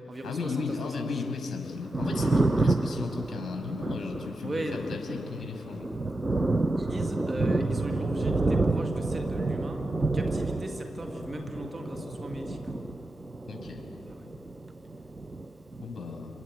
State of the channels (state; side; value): normal; both; correlation 0.88